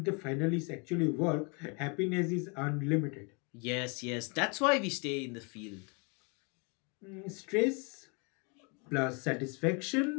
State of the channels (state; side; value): quieter; right; 33.3 dB